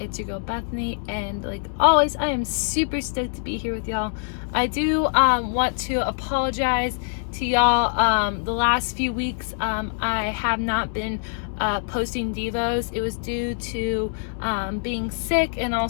your girl Bethany, and like always, I am super stoked to be here with y'all. I do want to apologize to y'all. The last few weeks, I have not been posting Devos. It was due to being sick and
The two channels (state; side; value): silent; right; digital silence